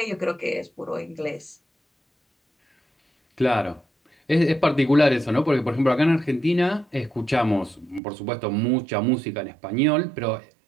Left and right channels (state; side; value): drops out; left; at 8.0 s